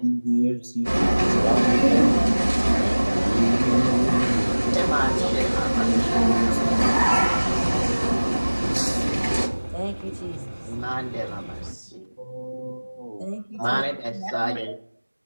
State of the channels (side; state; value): both; inverted; correlation -1.00